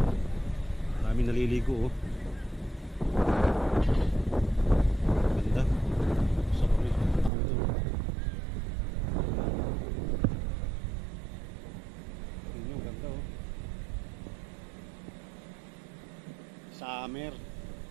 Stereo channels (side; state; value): left; drops out; at 7.3 s